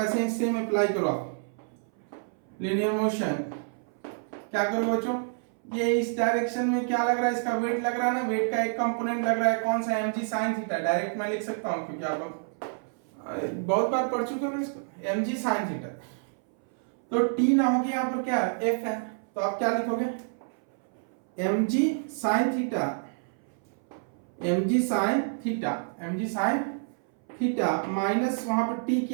ही सेम अप्लाई करो आप। लीनियर मोशन क्या करो बच्चों, ये इस डायरेक्शन में क्या लग रहा है, इसका वेट लग रहा है ना, वेट का एक कंपोनेंट लग रहा है, कौन सा, mg sin थीटा, डायरेक्ट मैं लिख सकता हूं क्योंकि आप बहुत बार पढ़ चुके हो इसको, mg sin थीटा। तो t ना होगी यहाँ पर क्या f है, तो आप क्या लिखोगे, mg sin theta, mg sin theta, mg sin theta minus वहां पर t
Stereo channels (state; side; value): silent; left; 59 dB below the other